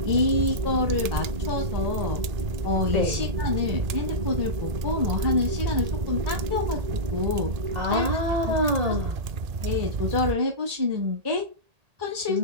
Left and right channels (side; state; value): left; late; 1.8 ms